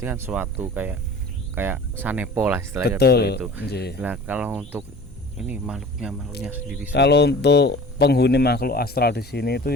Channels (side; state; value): both; normal; correlation 0.42